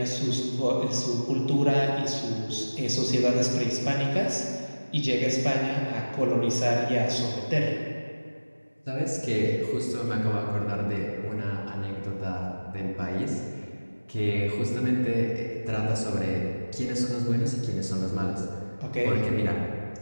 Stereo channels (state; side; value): inverted; both; correlation -1.00